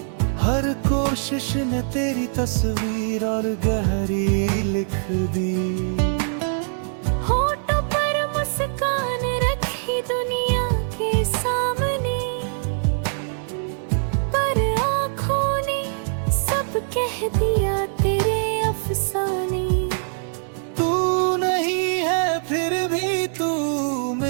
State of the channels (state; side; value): silent; left; 63 dB below the other